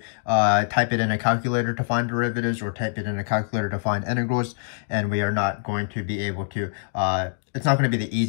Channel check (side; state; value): right; silent; digital silence